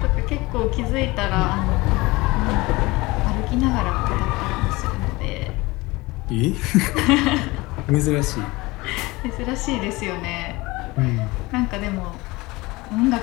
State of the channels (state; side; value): quieter; right; 22.1 dB